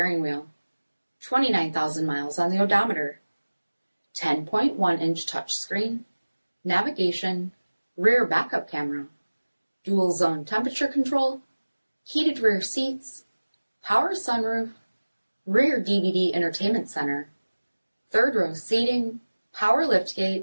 wheel, 29,000 miles on the odometer, 10.1-inch touchscreen, navigation, rear backup camera, dual zone temperature control, heated rear seats, power sunroof, rear DVD entertainment center, third row seating, power liftgate,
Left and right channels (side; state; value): both; inverted; correlation -1.00